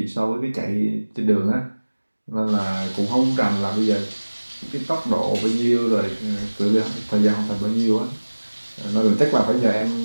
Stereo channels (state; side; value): inverted; both; correlation -1.00